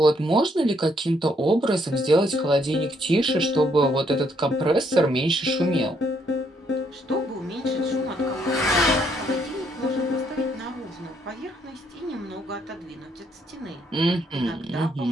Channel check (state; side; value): normal; both; correlation 0.71